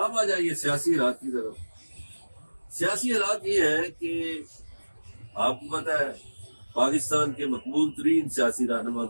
आ जाइए सियासी हालात की तरफ। सियासी हालात ये है कि आपको पता है पाकिस्तान के मकबूल तरीन सियासी रहनुमा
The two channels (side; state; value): both; inverted; correlation -1.00